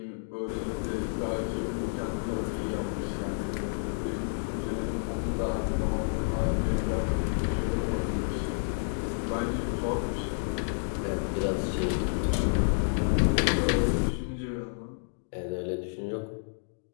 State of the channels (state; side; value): silent; right; digital silence